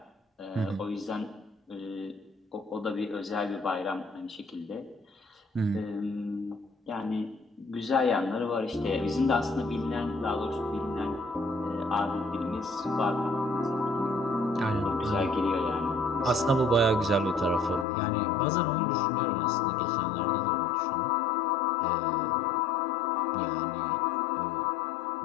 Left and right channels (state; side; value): drops out; right; at 17.9 s